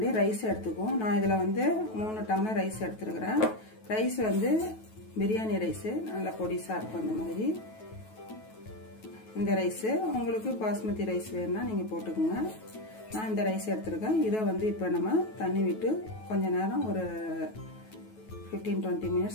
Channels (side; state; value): right; late; 9.2 ms